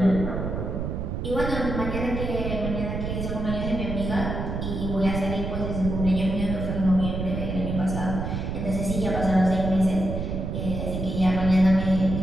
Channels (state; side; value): noise; right; rumble, 3 dB below the sound